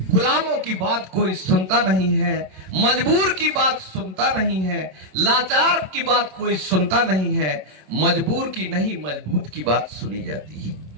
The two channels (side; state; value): left; late; 27 ms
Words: गुलामों की बात कोई सुनता नहीं है, मजबूर की बात सुनता नहीं है, लाचार की बात कोई सुनता नहीं है, मजबूर की नहीं मजबूत की बात सुनी जाती